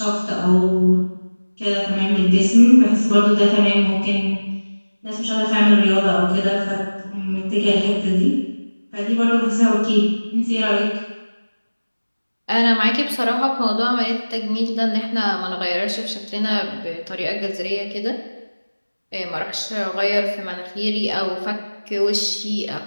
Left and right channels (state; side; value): inverted; both; correlation -1.00